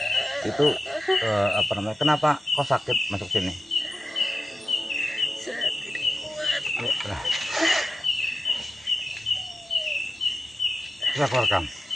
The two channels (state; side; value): normal; both; correlation 0.92